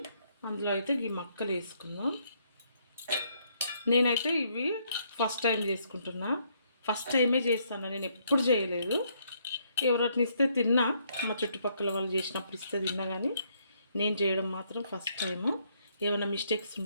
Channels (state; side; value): inverted; both; correlation -0.71